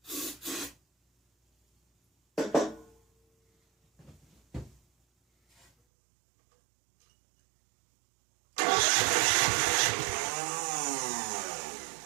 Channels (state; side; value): drops out; left; at 5.7 s